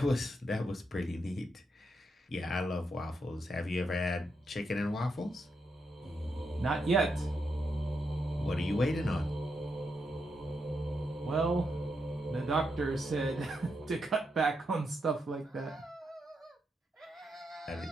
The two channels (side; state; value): both; normal; correlation 0.83